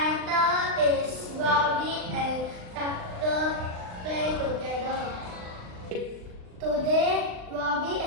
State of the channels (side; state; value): left; late; 39 ms